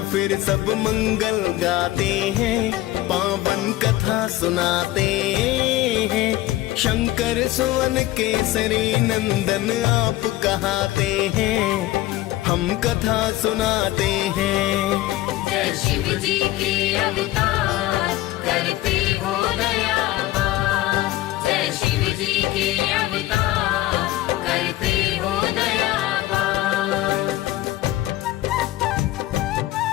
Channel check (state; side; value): quieter; right; 15.9 dB